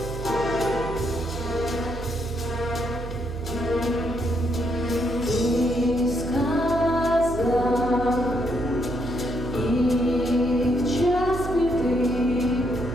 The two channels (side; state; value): right; noise; hum, 8 dB below the sound